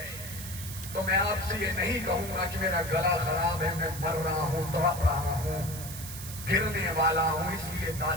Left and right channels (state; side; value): noise; right; hiss, 10 dB below the sound